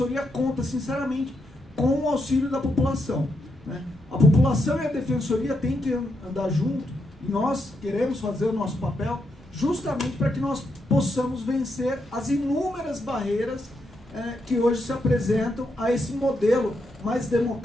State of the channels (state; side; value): normal; both; correlation 0.81